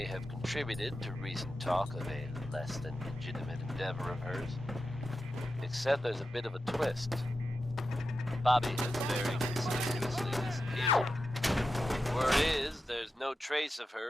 have contributed to recent talk of a less than legitimate endeavor of hers. Except there's a bit of a twist. Bobby has very conspicuously disappeared. Word is, there's no trace of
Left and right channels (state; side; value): normal; both; correlation 0.90